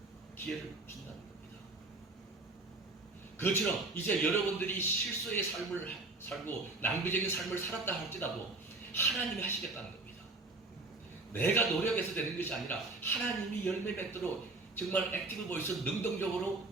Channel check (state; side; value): quieter; left; 3.2 dB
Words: 기회를 준다는 겁니다. 그것처럼 이제 여러분들이 실수의 삶을 살고 낭비적인 삶을 살았다 할지라도 하나님이 하시겠다는 겁니다. 내가 노력해서 되는 것이 아니라 하나님이 열매 맺도록 정말 액티브 보이스 능동적으로